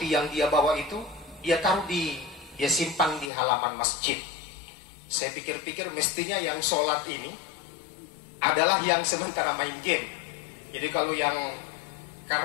yang dia bawa itu, dia simpan di halaman masjid. Saya pikir-pikir mestinya yang sholat ini adalah yang sementara main game. Jadi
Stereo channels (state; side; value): drops out; right; at 3.3 s